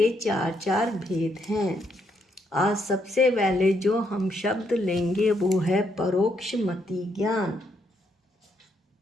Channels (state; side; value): normal; both; correlation 0.75